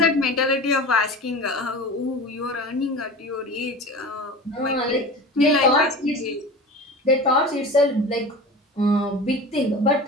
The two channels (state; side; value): normal; both; correlation 0.33